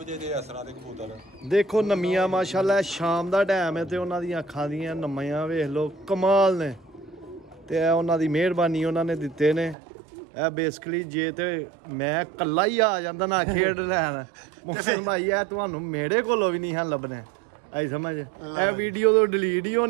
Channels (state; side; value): drops out; left; at 9.8 s